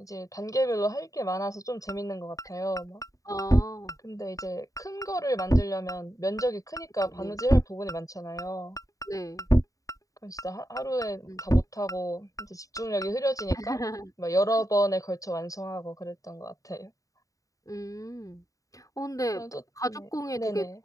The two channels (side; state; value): right; late; 0.16 ms